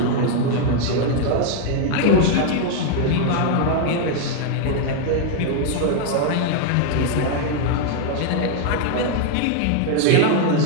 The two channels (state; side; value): different; both; correlation 0.00